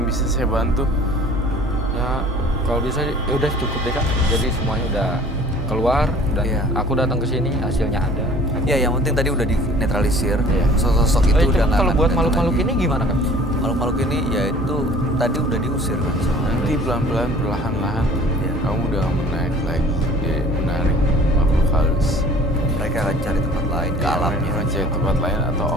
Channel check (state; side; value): normal; both; correlation 0.49